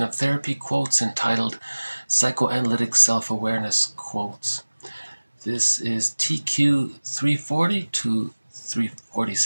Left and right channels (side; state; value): both; inverted; correlation -1.00